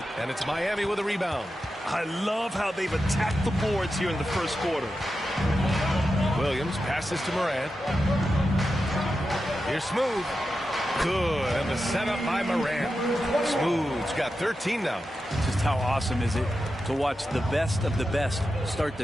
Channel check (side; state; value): both; normal; correlation 0.90